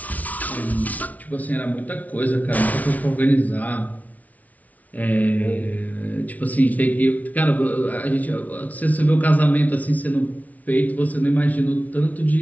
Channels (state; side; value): late; right; 0.072 ms